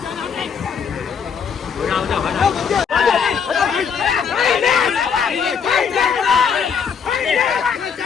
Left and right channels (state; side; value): quieter; right; 6.7 dB